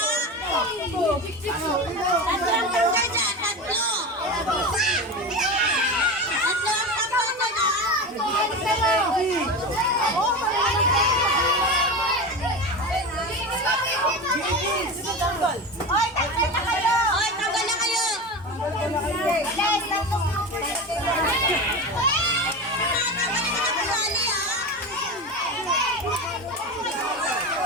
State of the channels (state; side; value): normal; both; correlation 0.25